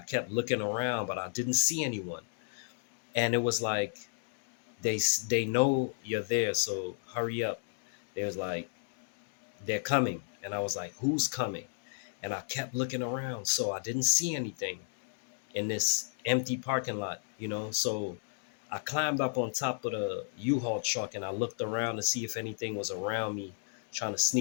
kept looking around, but I didn't see anyone. And it was like they know you're there, so hurry up. They was like, "They're coming," and I was like, "Who's coming?" And I kept looking around, so I didn't see anything in this empty parking lot, So I climbed up on top of the U-Haul truck and I looked around to see if anything was around me trying to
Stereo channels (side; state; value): right; silent; digital silence